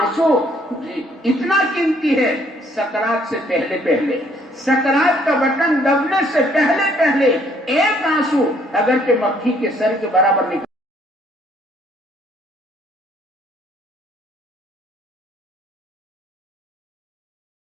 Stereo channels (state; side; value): normal; both; correlation 0.64